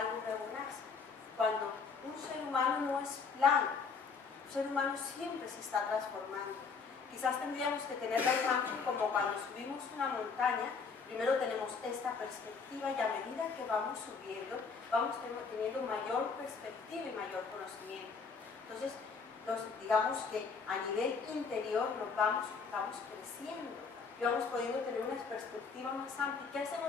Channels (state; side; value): quieter; right; 5.2 dB